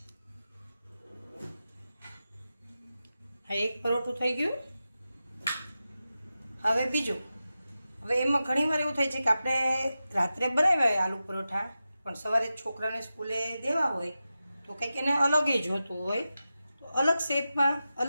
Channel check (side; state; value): both; inverted; correlation -0.93